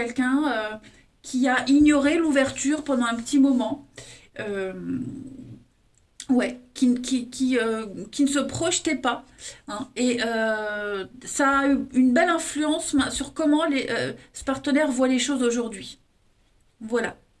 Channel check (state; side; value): identical; both; correlation 1.00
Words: qui a ignoré l'ouverture pendant un petit moment. Euh, ouais, qui ne se projetait pas. Hein, et ça a eu une belle influence sur comment ce partenaire voit les choses aujourd'hui. Voilà.